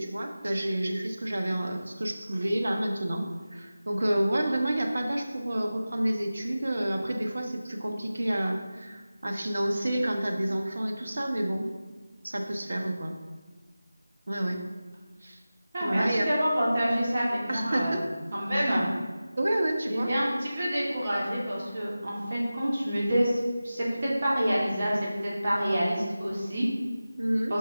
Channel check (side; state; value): both; inverted; correlation -0.96